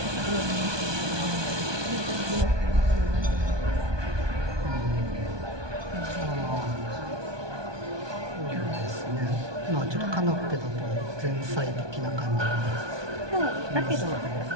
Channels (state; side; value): late; left; 1.2 ms